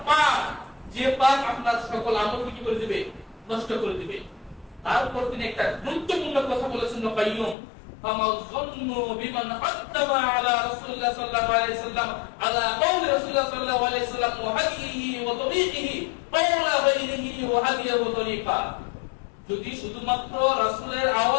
পাপ যে পাপ আপনার সকল আমলকে কি করে দিবে? নষ্ট করে দিবে। তারপর তিনি একটা গুরুত্বপূর্ণ কথা বলেছেন কাইয়ুম, ফামাল যান্নু বিমান আত্তাবা আলা রাসূলুল্লাহ সাল্লাল্লাহু আলাইহি সাল্লাম আলা কওলি রাসূলুল্লাহ সাল্লাল্লাহু আলাইহি সাল্লাম ওয়া হাদিহি ওয়া তরিকিহি কওলা গায়রিহি ওয়া হাদিহি ওয়া তরিকা। যদি শুধুমাত্র রাসূলের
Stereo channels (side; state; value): right; drops out; at 7.6 s